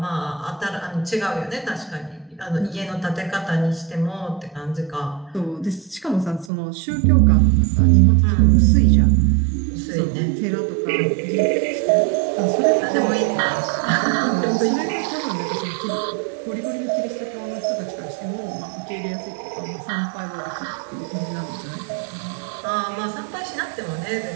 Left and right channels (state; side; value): drops out; left; at 6.5 s